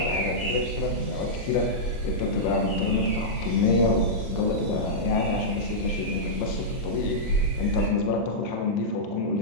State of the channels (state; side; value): late; right; 34 ms